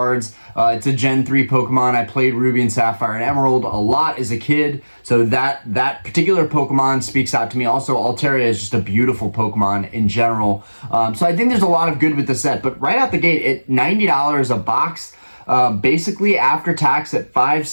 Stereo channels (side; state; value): both; inverted; correlation -1.00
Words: It's a Gen 3 Pokemon. I played Ruby and Sapphire and Emerald a lot as a kid, so that particular Pokemon speaks out to me. Also, Altaria is just a beautiful Pokemon in general. So I think there's a lot of good with the set. But right out the gate, at $90 a box, basically after tax at